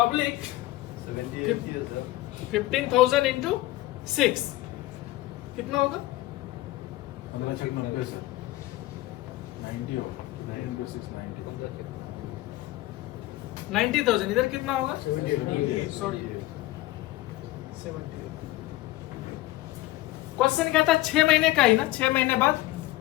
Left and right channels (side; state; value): right; quieter; 17.7 dB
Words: 15,000 इंटू 6 कितना होगा? 90,000। इधर कितना होगा? सॉरी, 70। क्वेश्चन क्या था? 6 महीने का ही ना, 6 महीने बाद,